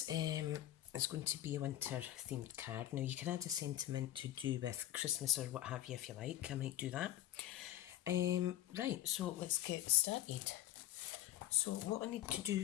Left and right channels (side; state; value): right; quieter; 13.6 dB